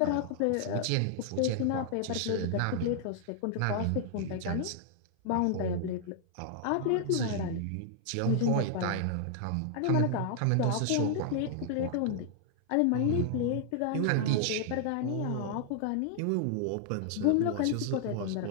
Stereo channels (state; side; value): different; both; correlation 0.00